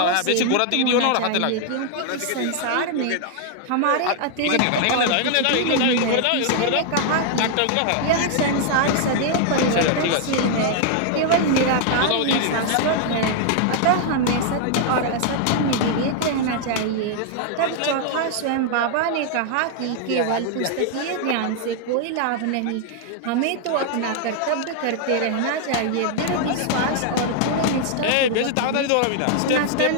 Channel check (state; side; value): different; both; correlation 0.00